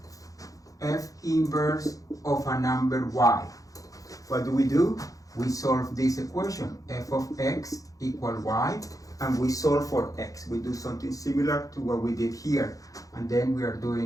f inverse of a number y, what do? We solve this equation, f of x equal y, and we solve for x. We do something similar to what we did here, and then we are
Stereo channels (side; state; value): right; late; 0.17 ms